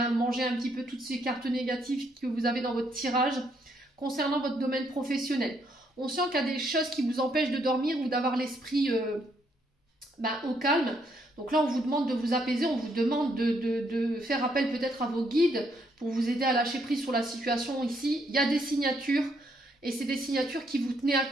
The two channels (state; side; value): normal; both; correlation 0.73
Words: manger un petit peu toutes ces cartes négatives que vous avez dans votre tirage concernant votre domaine professionnel. On sent qu'il y a des choses qui vous empêchent de dormir ou d'avoir l'esprit au calme. Donc là, on vous demande de vous apaiser, on vous demande de faire appel peut-être à vos guides pour vous aider à lâcher prise sur la situation ici. Il y a des signatures et c'est des signatures qui vous tenaient à